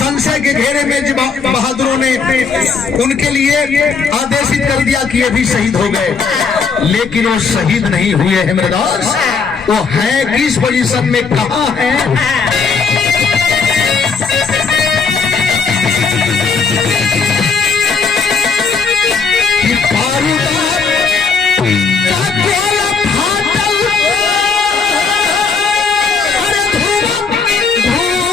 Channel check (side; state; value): right; quieter; 5.3 dB